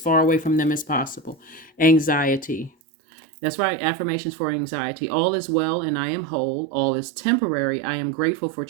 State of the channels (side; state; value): left; drops out; at 2.7 s